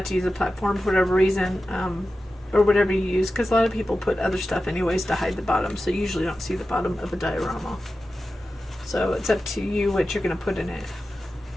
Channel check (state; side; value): normal; both; correlation 0.93